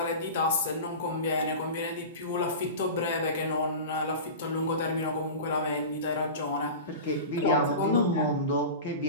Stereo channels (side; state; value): both; inverted; correlation -0.30